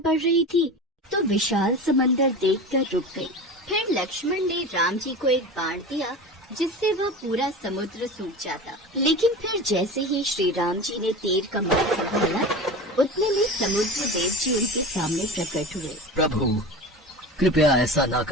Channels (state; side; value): normal; both; correlation 0.31